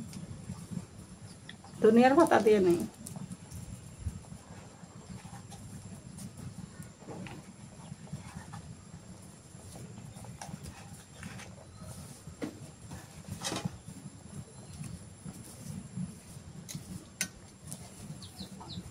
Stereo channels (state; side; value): identical; both; correlation 1.00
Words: দুনিয়ার ভাতা দিয়ে নেই।